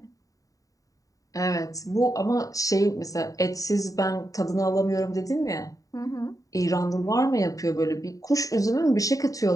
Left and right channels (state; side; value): late; right; 0.16 ms